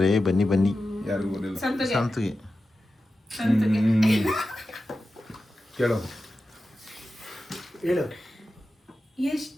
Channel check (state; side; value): normal; both; correlation 0.93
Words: ಬನ್ನಿ ಬನ್ನಿ. ಯಾರಿಗೂ ಗೊತ್ತಿಲ್ಲ. ಸಂತಿಗೆ ಕೇಳು ಹೇಳು.